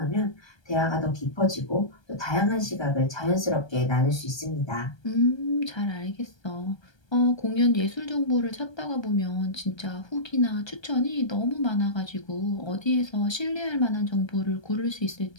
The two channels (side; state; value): right; late; 1.3 ms